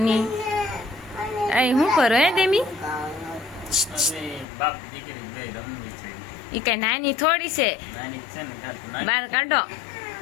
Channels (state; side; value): drops out; right; at 4.5 s